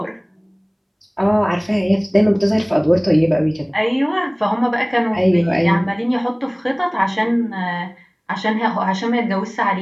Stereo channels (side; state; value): both; identical; correlation 1.00